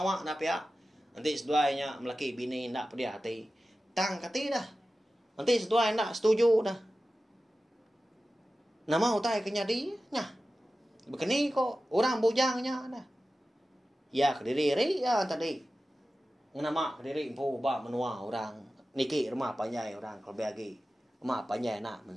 nak pihak. Nanti seduanya melaki bini nak pedia hati. Tang kati dah. Nanti sedua nak setuju dah. Nama utai kenyadi. Nya. Begini kok. Orang bujangnya dah. Ya kediri ya tadi. Nama diri impu ba menua orang niki rumah panjai orang kalau bagi rumah panjai nak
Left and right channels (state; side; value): normal; both; correlation 0.94